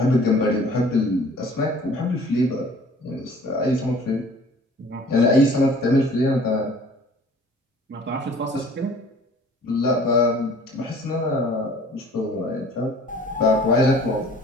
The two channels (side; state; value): both; normal; correlation 0.50